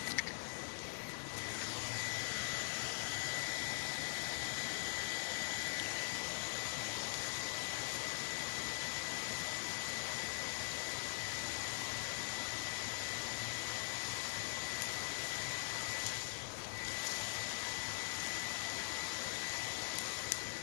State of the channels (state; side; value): silent; right; digital silence